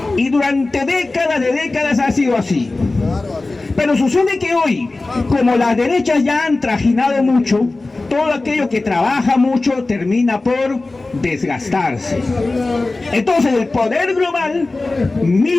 Y durante décadas ha sido así. Pero sucede que hoy, como las derechas ya han trajinado mucho, todo aquello que trabaja mucho termina por desgastarse. Entonces el poder global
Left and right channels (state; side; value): quieter; right; 3.2 dB